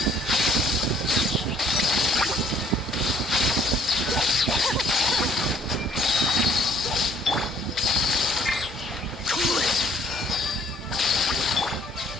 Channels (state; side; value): normal; both; correlation 0.60